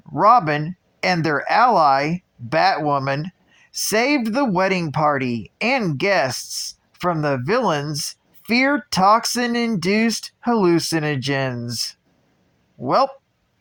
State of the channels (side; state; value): both; identical; correlation 1.00